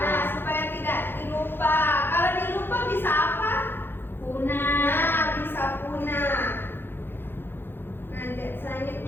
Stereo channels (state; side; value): late; right; 0.10 ms